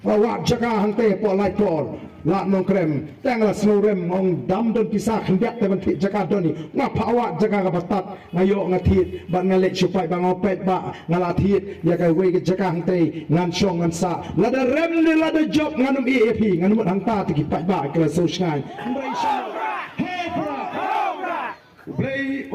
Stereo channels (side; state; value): both; identical; correlation 1.00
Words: wa jaga hangte po lai por la nong krem tangla snurem ong dam don pisah hendak te banti jaga doni ngapa awak jaga ka batat ngayo ngatit ban ngale supai bang opet ba ngalatit ya ka we ke jaga hangte ngan syong ngan sa lada rem ni lada job nganum EAP nganum hangta ti kipai ba kala sosngan mbrai syong play